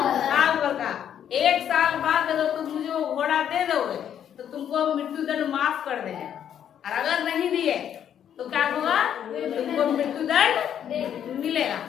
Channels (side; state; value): right; quieter; 9.4 dB